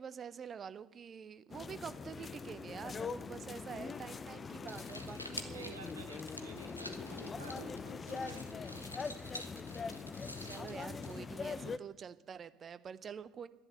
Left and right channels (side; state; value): both; normal; correlation 0.64